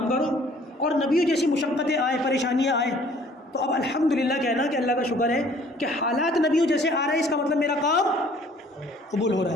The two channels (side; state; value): both; normal; correlation 0.56